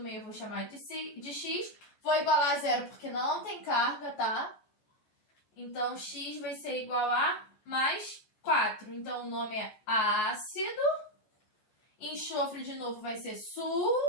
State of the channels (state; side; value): late; right; 14 ms